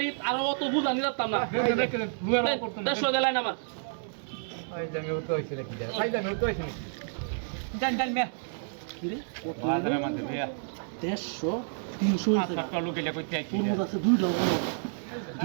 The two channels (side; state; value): left; silent; 58 dB below the other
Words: আর অত বুঝা নিলাম না রেখে দেন লুয়ার করতে 150 দেলাই না আমার ওই জামে উঠতে হইছে নাকি যা ভাই জামে উঠতে হইছে জান জান মে কি রে বাজারে মধ্যে ভাইয়া 150 300 টাকা লোক এলা কইতে আইছি তোর মধ্যে আছে